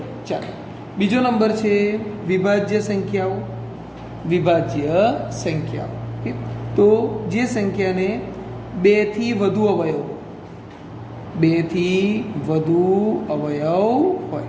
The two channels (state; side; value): identical; both; correlation 1.00